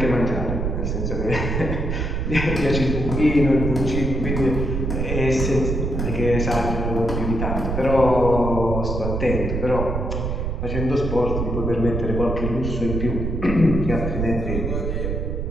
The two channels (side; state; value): right; noise; rumble, 2 dB below the sound